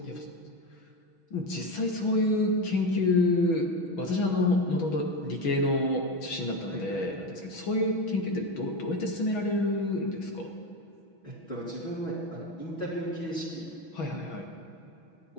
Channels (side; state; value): right; late; 6.2 ms